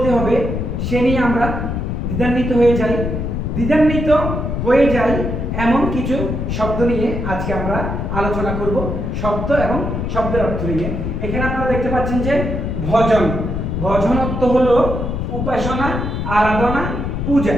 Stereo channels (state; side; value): noise; left; rumble, 3 dB below the sound